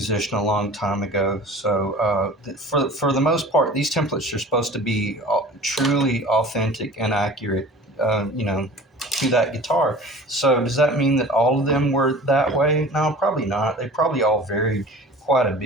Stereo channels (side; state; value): both; normal; correlation 0.42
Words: a long time ago. So for the most part, these templates are supposed to be truly authentic and accurate, to that guitar. So does that mean that all of them were that way? No, probably not. They probably all varied quite a